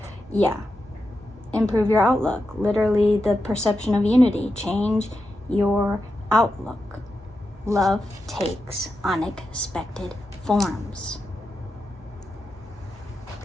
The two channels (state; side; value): normal; both; correlation 0.88